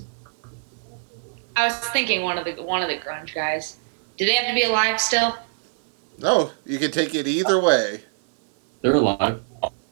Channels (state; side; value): silent; left; 61 dB below the other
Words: I was thinking one of the grunge guys. Do they have to be alive still? No, you can take it either way. They're alive.